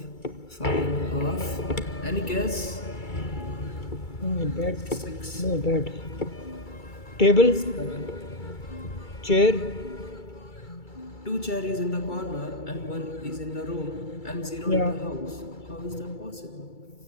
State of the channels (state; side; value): late; right; 2.3 ms